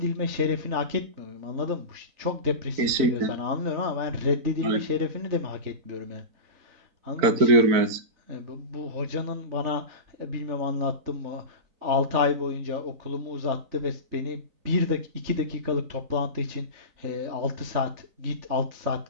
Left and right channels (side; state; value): left; late; 4.5 ms